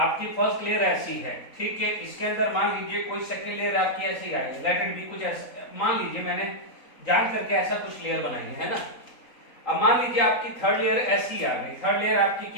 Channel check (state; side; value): late; right; 3.8 ms